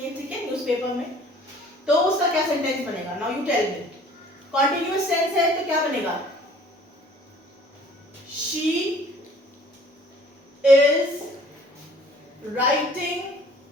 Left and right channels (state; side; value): normal; both; correlation 0.53